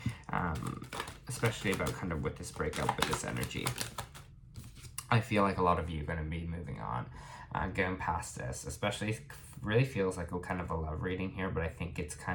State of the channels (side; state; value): both; identical; correlation 1.00